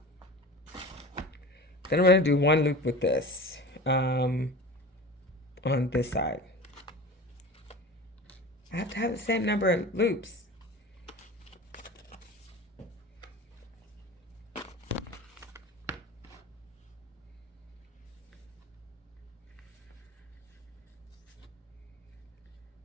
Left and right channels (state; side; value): normal; both; correlation 0.35